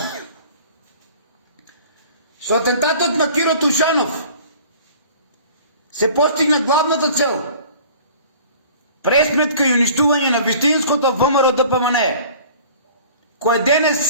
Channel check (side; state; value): both; inverted; correlation -0.47